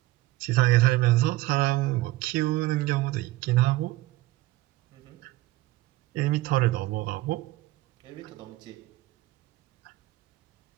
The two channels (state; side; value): quieter; left; 17.9 dB